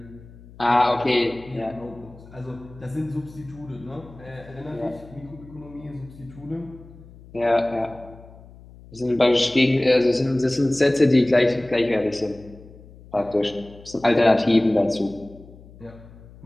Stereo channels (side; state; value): left; noise; hum, 21 dB below the sound